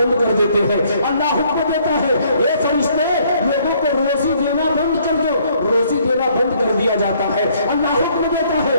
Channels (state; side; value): inverted; both; correlation -0.64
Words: کر دیتے ہیں۔ اللہ حکم دیتا ہے اے فرشتے لوگوں کو روزی دینا بند کر دو، روزی دینا بند کر دیا جاتا ہے۔ اللہ حکم دیتا ہے